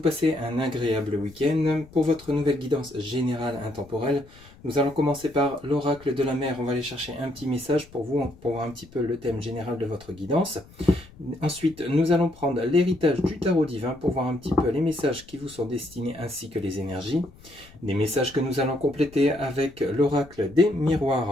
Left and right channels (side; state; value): left; noise; rumble, 23 dB below the sound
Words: passez un agréable week-end. Pour votre nouvelle guidance générale intemporelle, nous allons commencer par l'oracle de la mer. On va aller chercher un petit message pour vous, pour voir un petit peu le thème général de votre guidance. Ensuite, nous allons prendre l'héritage du tarot divin pour voir un petit peu les messages qui vous sont destinés ainsi que les énergies. Des messages que nous allons compléter avec l'oracle des